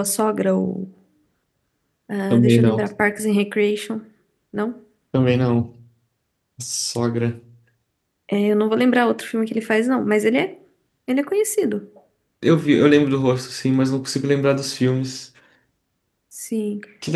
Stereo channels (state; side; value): identical; both; correlation 1.00